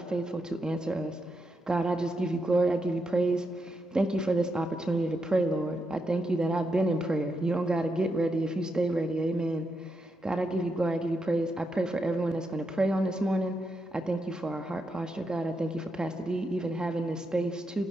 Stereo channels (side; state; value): both; normal; correlation 0.83